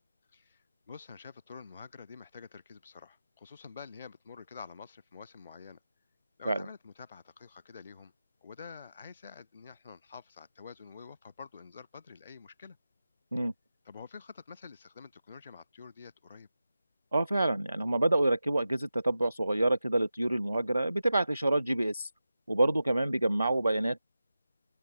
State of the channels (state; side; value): inverted; both; correlation -0.93